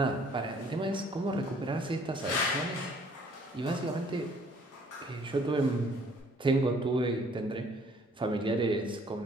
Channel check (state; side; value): normal; both; correlation 0.59